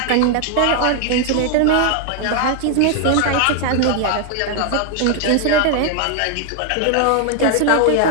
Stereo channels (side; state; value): both; different; correlation 0.00